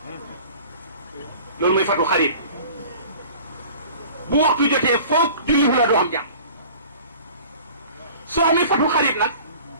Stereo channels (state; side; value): inverted; both; correlation -0.45